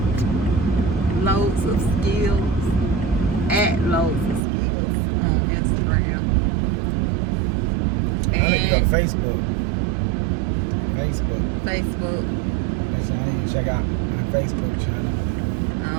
Loads of Skills at Loads of Skills on Instagram. I need to go to Facebook. Facebook. That's how I need to check out my Facebook channel.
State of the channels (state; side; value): drops out; left; at 4.4 s